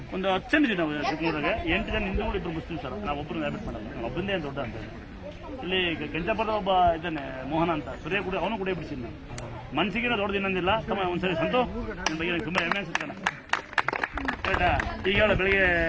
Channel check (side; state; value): both; identical; correlation 1.00